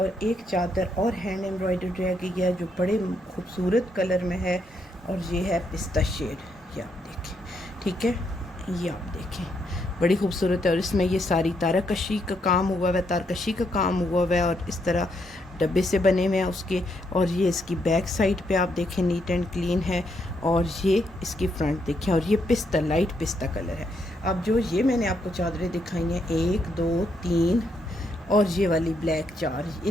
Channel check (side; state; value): both; normal; correlation 0.77